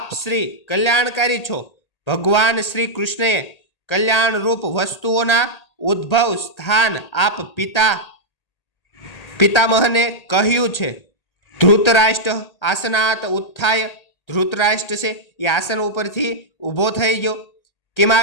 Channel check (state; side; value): late; right; 1.8 ms